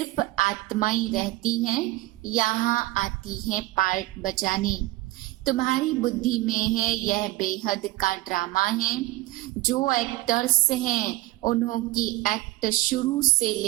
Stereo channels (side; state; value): left; quieter; 18.9 dB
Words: आत्माएं रहती हैं। यहाँ आती हैं पार्ट बजाने। तुम्हारी बुद्धि में है यह बेहद का ड्रामा है। जो एक्टर्स हैं उन्हों की एक्ट शुरू से